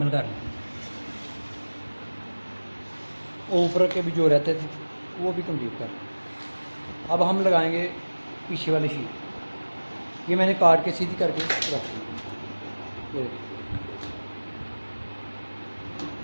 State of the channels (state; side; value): inverted; both; correlation -1.00